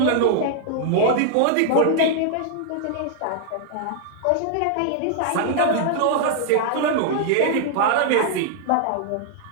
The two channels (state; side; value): different; both; correlation -0.01